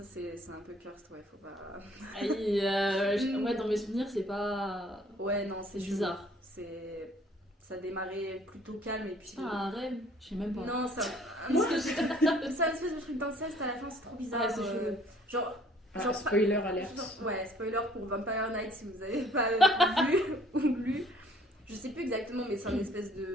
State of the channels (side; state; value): both; normal; correlation 0.58